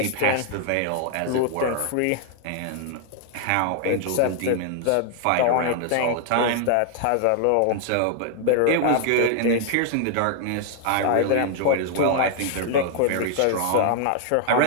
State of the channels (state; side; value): different; both; correlation 0.00